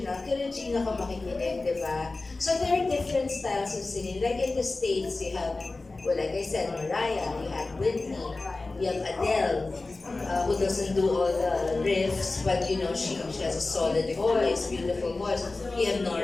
kay Regina ako makikinig, di ba? So there are different styles of singing. Like in the States, you have, well, like I said, Mariah, you have Whitney, you have Adele, who doesn't do all the riffs, but you know, she has a solid voice, beautiful voice. You have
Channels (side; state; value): right; quieter; 3.4 dB